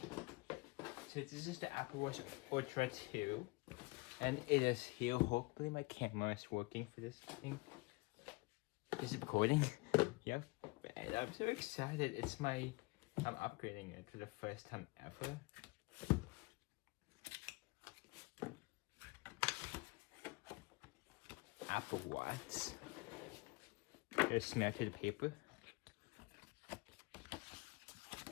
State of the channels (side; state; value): right; quieter; 25.0 dB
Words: So this is the Apple Watch Ultra 2. And it is here. Hopefully my camera is working for this thing. Is it recording? Yep. And I'm so excited. I'm upgrading it for the first time ever. Apple Watch. There's smell to the paper.